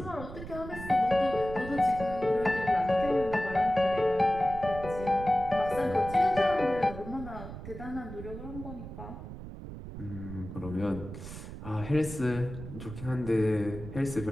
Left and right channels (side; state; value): right; noise; rumble, 11 dB below the sound